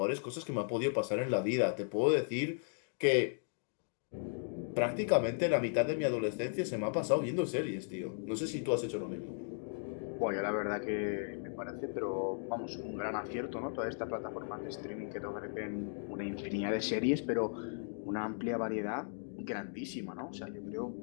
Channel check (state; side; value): silent; right; digital silence